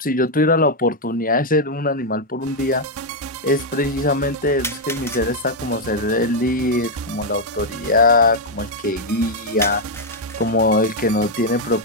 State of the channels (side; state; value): both; normal; correlation -0.01